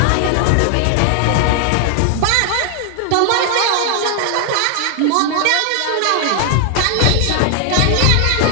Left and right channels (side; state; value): both; different; correlation 0.00